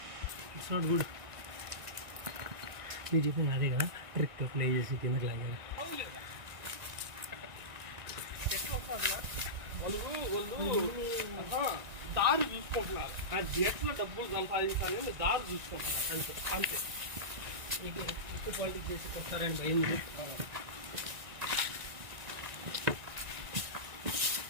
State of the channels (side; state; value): left; late; 1.9 ms